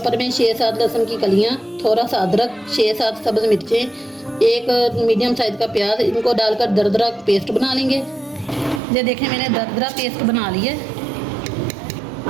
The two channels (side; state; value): left; drops out; at 8.8 s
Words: में 6-7 लहसुन की कलियां, थोड़ा सा अदरक, 6-7 सब्ज मिर्चें, एक मीडियम साइज का प्याज, इनको डालकर दरदरा पेस्ट बना लेंगे। ये देखें, मैंने दरदरा पेस्ट बना ली है।